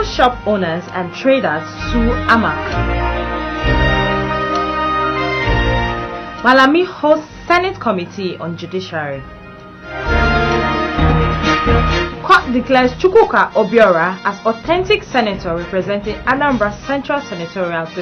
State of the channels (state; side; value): identical; both; correlation 1.00